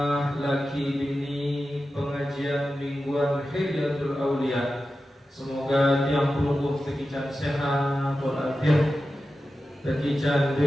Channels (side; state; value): both; normal; correlation 0.92